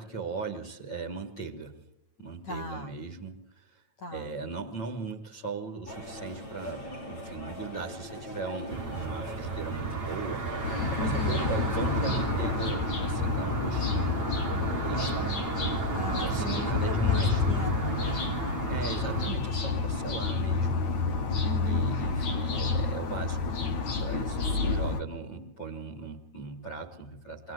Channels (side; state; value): right; late; 9.0 ms